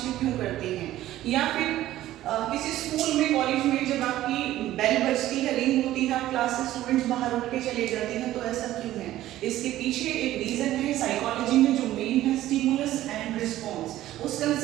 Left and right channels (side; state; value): left; quieter; 14.3 dB